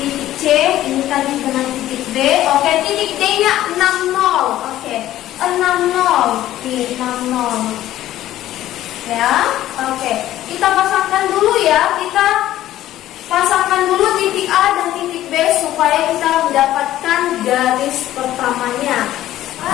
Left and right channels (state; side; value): quieter; right; 13.7 dB